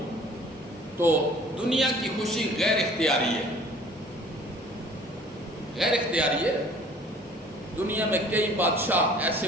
تو دنیا کی خوشی غیر اختیاری ہے، غیر اختیاری ہے۔ دنیا میں کئی بادشاہ ایسے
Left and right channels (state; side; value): normal; both; correlation 0.51